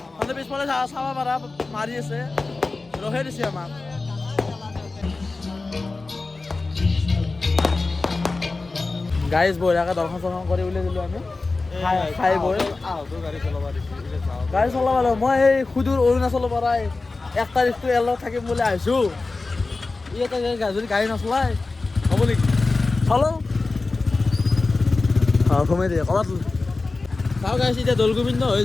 মানে পিছফালে চাব পাৰা মাৰি আছে, ৰহে দিছে আমাক। গাইজ বঢ়িয়াকৈ দৰ্শন চৰ্শন কৰি উলিয়াই দিলোঁ আমি, খাই বৈ গাড়ী চলাব লাগিব। মই এই সুদূৰ অৰুণাচলৰ পৰাই 1 তাৰিখটো ইয়াৰ লগত থাকিম বুলি আহিছোঁ। ইয়াতে যদি গাড়ী নচলাই হ'ব নেকি? চলো সোমাই দিয়ে ক'ৰবাত চাওঁ গাইছ। এতিয়া দৌলগোবিন্দ হৈ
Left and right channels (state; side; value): quieter; right; 3.6 dB